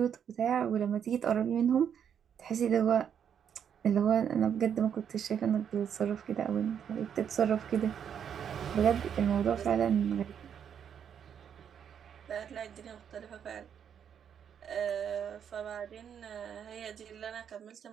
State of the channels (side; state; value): left; quieter; 8.3 dB